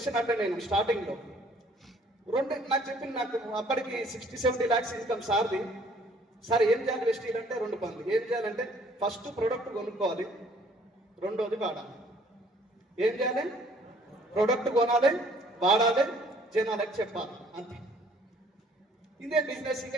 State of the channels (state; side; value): normal; both; correlation 0.59